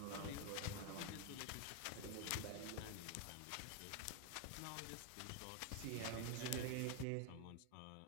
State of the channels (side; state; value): both; different; correlation 0.01